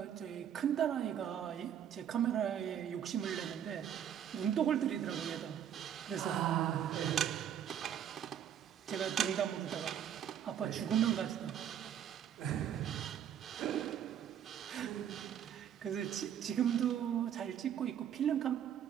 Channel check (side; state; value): left; quieter; 9.5 dB